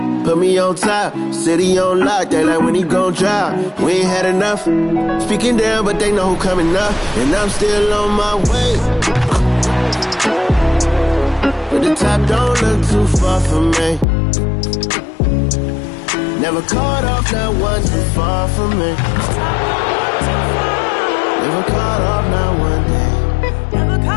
Put me on top, city on lock, they like when he gon' drop. We ain't had enough, speaking down, but they know who coming up. And I'm still on my way. But the top don't look too far from me. Never caught off, not one too far from me. Never caught off, not one day. Never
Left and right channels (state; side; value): drops out; right; at 14.1 s